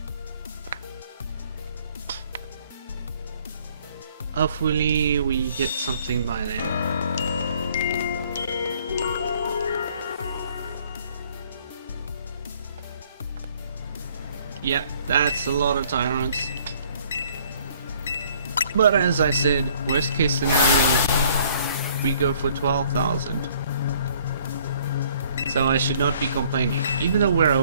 Hopefully we get something by then. Yep, that's a lot of Tyrants. But as I said, worst case scenario, we go for 12,000. So I should not be complaining. Even though we're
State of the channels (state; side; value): inverted; both; correlation -0.60